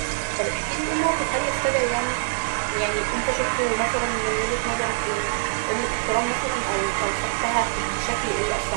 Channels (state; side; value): silent; left; digital silence